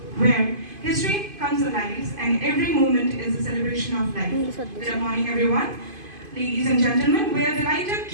where history comes alive and every moment is a celebration of life. Good morning, everyone. Ladies and gentlemen, we are delighted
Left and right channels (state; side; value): late; left; 2.5 ms